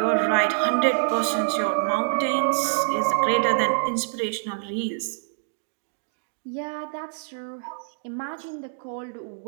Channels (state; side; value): silent; left; digital silence